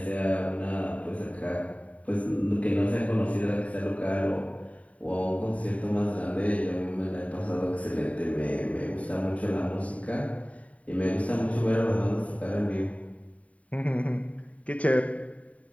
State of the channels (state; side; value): late; right; 0.067 ms